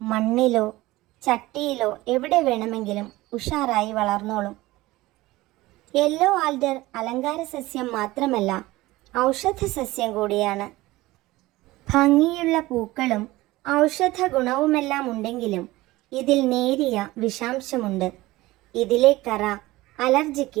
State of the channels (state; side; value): quieter; left; 18.8 dB